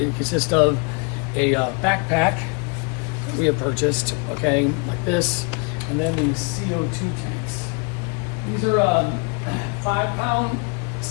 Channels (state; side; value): quieter; right; 33.6 dB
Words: consists of a backpack that we have purchased, okay, like this, and then these CO2 tanks. These are 5-pound